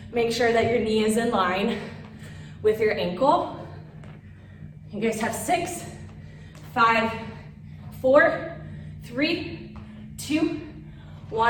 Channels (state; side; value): identical; both; correlation 1.00